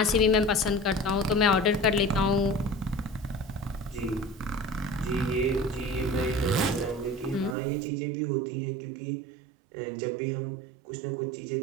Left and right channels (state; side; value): drops out; left; at 7.6 s